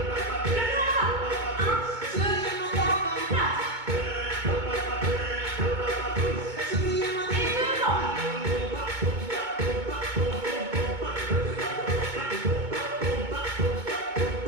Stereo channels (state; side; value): late; left; 2.2 ms